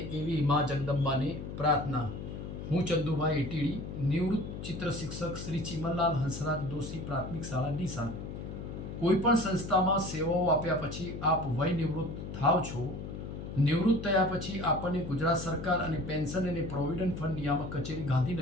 એવી મા જગદંબાને પ્રાર્થના. હું ચંદુભાઈ એટીડી, નિવૃત્ત ચિત્ર શિક્ષક શ્રી ચિમનલાલ હંસરાજ દોશી પ્રાથમિક શાળા ડીસા. કોઈપણ સંસ્થામાં સેવાઓ આપ્યા પછી આપ વય નિવૃત્ત થાવ છો. નિવૃત્ત થયા પછી આપણને ગુજરાત સરકાર અને પેન્શન અને પ્રોવિડન્ટ ફંડ નિયામક કચેરી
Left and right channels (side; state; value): left; noise; hum, 8 dB below the sound